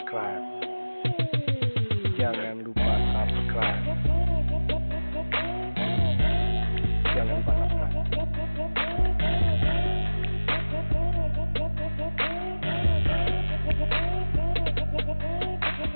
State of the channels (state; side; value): inverted; both; correlation -1.00